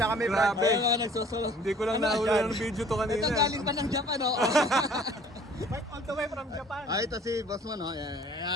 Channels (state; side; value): normal; both; correlation 0.53